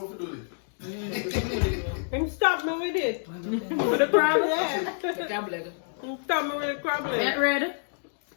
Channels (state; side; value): silent; right; digital silence